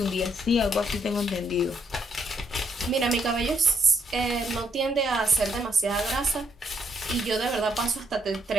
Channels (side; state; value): both; normal; correlation 0.71